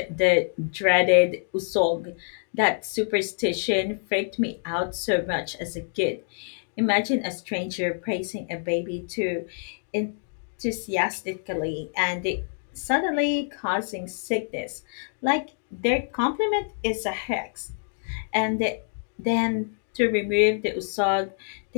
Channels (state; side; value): silent; right; digital silence